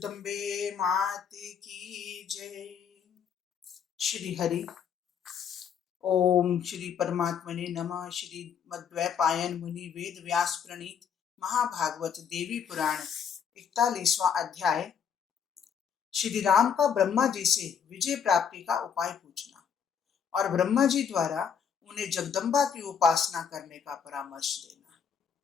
माते की जय। श्री हरि ओम श्री परमात्मने नमः। श्री मद्वैपायन मुनि वेद व्यास प्रणीत महाभागवत देवी पुराण 41वां अध्याय। श्री राम का ब्रह्मा जी से विजय प्राप्ति का उपाय पूछना और ब्रह्मा जी द्वारा उन्हें जगदम्बा की उपासना करने का परामर्श देना।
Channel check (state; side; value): quieter; right; 7.4 dB